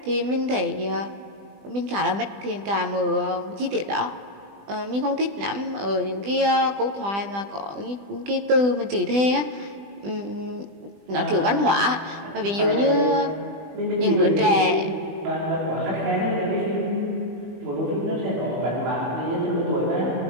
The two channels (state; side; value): late; left; 20 ms